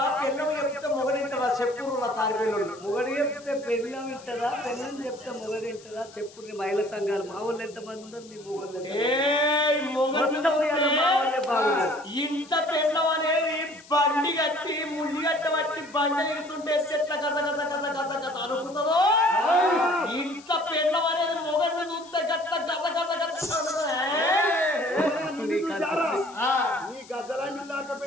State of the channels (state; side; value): noise; left; hiss, 22 dB below the sound